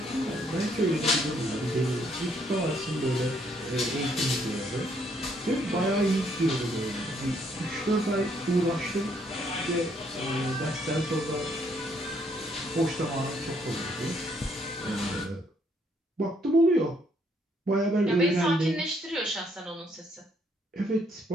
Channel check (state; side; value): normal; both; correlation 0.70